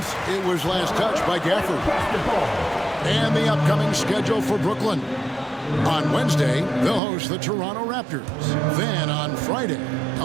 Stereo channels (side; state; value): left; drops out; at 7.0 s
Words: It was last touched by Gafford. And the upcoming schedule for Brooklyn. On Wednesday, they'll host the Toronto Raptors. Then on Friday,